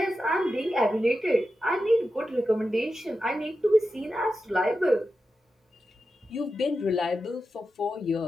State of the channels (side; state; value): both; normal; correlation 0.90